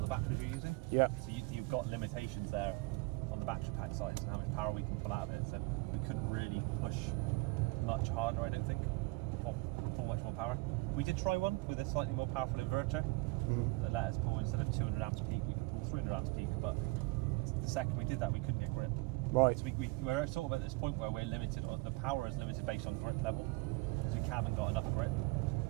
the batteries you're using. Yeah. So you've got limitations there on the battery pack size and how much power we can pull out of it. So we couldn't really push much harder, I don't think, or pull much more power. We did try one with a slightly more powerful inverter that let us pull, instead of 200 amps peak, we could pull 300 amps peak, but the second we did that, we couldn't get grip. Right. So we're sort of at this point where we're limited, the power is limited based on grip level, because we haven't got enough grip.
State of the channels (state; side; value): quieter; left; 26.0 dB